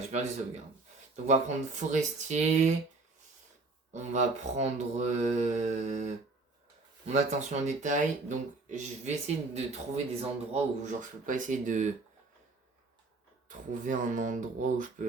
perdu les sauvegardes. Donc on va prendre forestier, on va prendre mon attention au détail. Donc je vais essayer de trouver des endroits où genre je peux pas essayer de trouver un endroit où je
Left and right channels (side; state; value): left; quieter; 3.5 dB